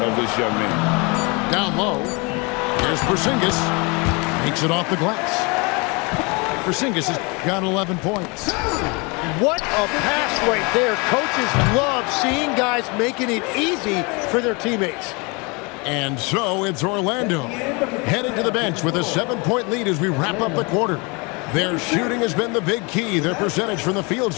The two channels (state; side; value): quieter; right; 29.2 dB